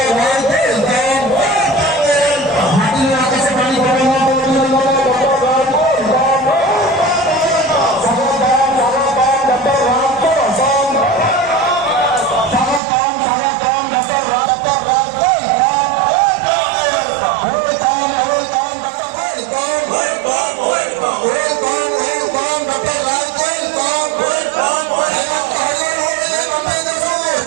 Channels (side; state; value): left; drops out; at 12.8 s